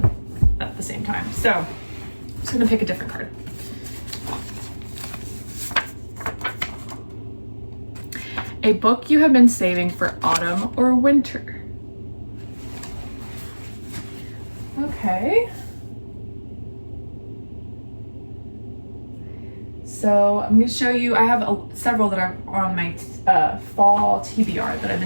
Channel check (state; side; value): inverted; both; correlation -1.00